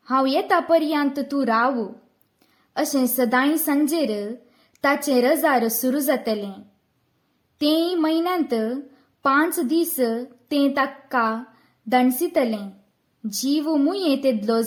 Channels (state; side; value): identical; both; correlation 1.00